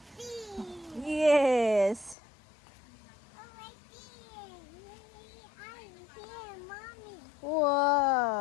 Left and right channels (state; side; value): drops out; right; at 2.1 s